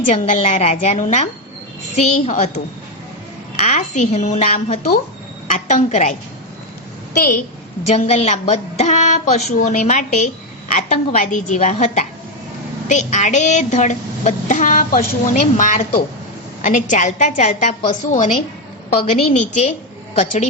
જંગલના રાજાનું નામ સિંહ હતું. આ સિંહનું નામ હતું આતંકરાય. તે જંગલના બધા પશુઓને માટે આતંકવાદી જેવા હતા. તે આડેધડ બધા પશુઓને મારતો અને ચાલતા ચાલતા પશુઓને પગની નીચે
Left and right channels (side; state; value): both; normal; correlation 0.07